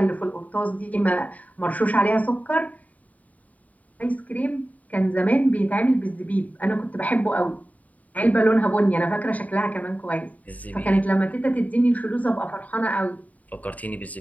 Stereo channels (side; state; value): right; late; 0.071 ms